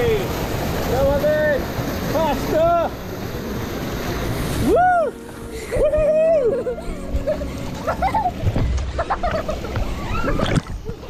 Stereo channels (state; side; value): identical; both; correlation 1.00